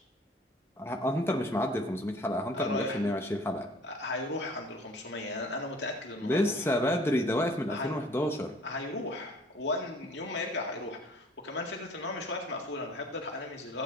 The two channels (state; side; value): normal; both; correlation 0.52